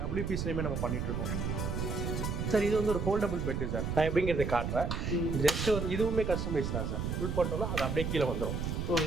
WPCலையுமே நம்ம பண்ணிட்டு இருக்கோம் சார். இது வந்து ஒரு ஃபோல்டபுள் பெட்டு சார். நான் எப்படிங்கிறத காட்டுறேன். ஜஸ்ட் வந்து இதுவுமே கஸ்டமைஸ் தான் சார். ஃபுல் பண்ணிட்டோம்னா அது அப்படியே கீழே வந்துடும்.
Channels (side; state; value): right; noise; rumble, 2 dB below the sound